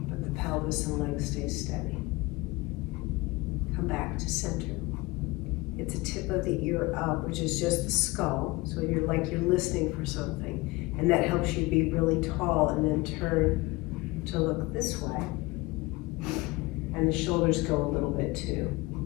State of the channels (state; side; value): quieter; right; 22.3 dB